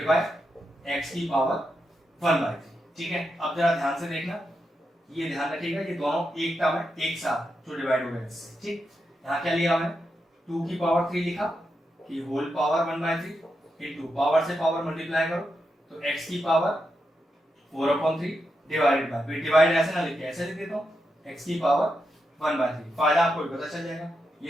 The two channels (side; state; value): both; normal; correlation 0.85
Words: बाय x की पावर 1/3। ठीक है अब जरा ध्यान से देखना ये ध्यान रखिएगा ये दोनों एक टर्म है एक साथ जो डिवाइड हो गए इससे। ठीक यहाँ क्या लिया मैंने 2 की पावर 3 लिखा कि होल पावर 1/3 इनटू पावर से पावर मल्टीप्लाई करो तो x की पावर 4/3 डिवाइडेड बाय डिवाइड ऐसे ना लिखे ऐसे लिख देता हूँ x की पावर 1/3। फायदा आपको पता चल जाएगा